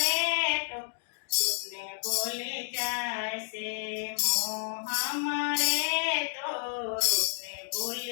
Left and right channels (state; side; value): silent; right; 58 dB below the other